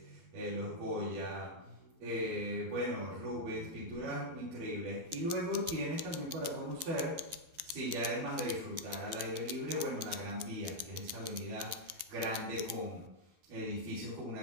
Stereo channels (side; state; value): left; late; 12 ms